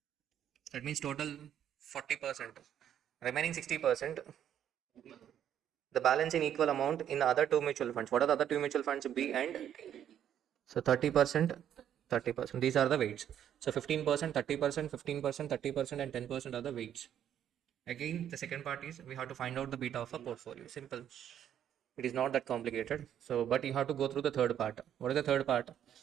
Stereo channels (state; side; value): quieter; left; 10.0 dB